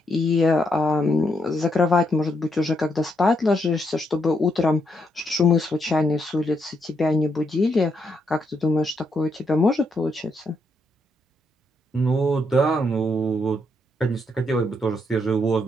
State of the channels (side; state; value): both; normal; correlation 0.78